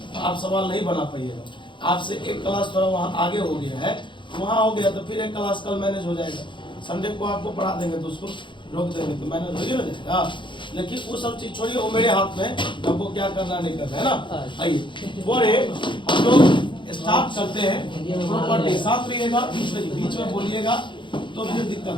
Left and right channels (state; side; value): late; right; 0.23 ms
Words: तो आप सवाल नहीं बना पाइएगा। आपसे एक क्लास थोड़ा वहाँ आगे हो गया है, वहाँ हो गया तो फिर एक क्लास कल मैनेज हो जाएगा। संडे को आपको पढ़ा देंगे तो उसको रोक देंगे तो मैनेज हो ही ना जाएगा। लेकिन वो सब चीज छोड़िए, वो मेरे हाथ में, हमको क्या करना नहीं करना है ना। आइए बोले, हम लोग स्टार्ट करते हैं प्रॉपर्टी। साथ रहिएगा, बीच में बोलिएगा तो फिर दिक्कत